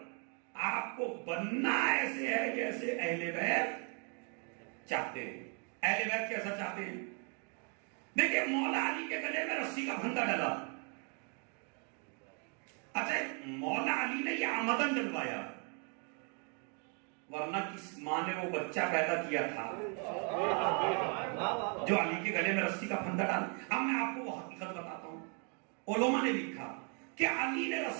آپ کو بننا ایسے ہے جیسے اہل بیت چاہتے ہیں۔ اہل بیت کیسا چاہتے ہیں؟ دیکھیں مولا علی کے گلے میں رسی کا پھندا ڈلا، اچھا مولا علی نے یہ آمدن ڈلوایا، ورنہ کس ماں نے وہ بچہ پیدا کیا تھا جو علی کے گلے میں رسی کا پھندا ڈالا؟ اب میں آپ کو وہ حقیقت بتاتا ہوں، علماء نے لکھا کہ علی نے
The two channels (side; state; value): left; quieter; 38.1 dB